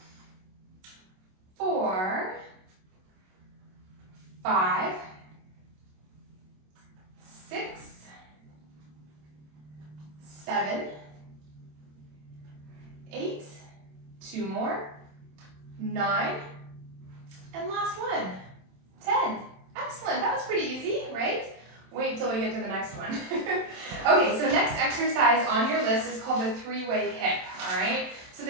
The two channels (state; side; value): late; left; 27 ms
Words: 2 more, 9, and last one, 10. Excellent, that was pretty easy, right? Wait till we get to the next one. Okay, so next exercise on your list is called the 3-way hip, all right? So